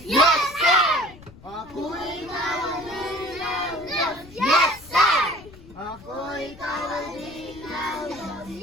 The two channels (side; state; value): left; noise; rumble, 20 dB below the sound